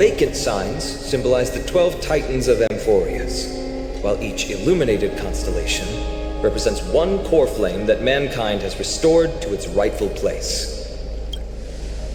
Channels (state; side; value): identical; both; correlation 1.00